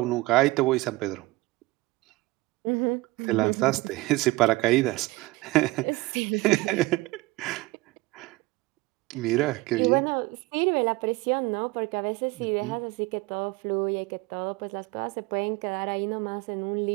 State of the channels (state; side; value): quieter; left; 21.1 dB